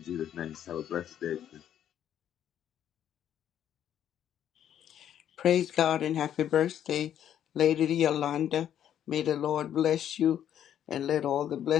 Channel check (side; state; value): right; quieter; 10.2 dB